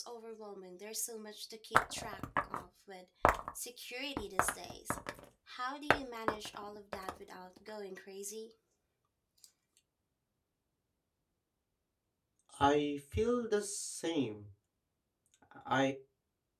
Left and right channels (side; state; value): both; identical; correlation 1.00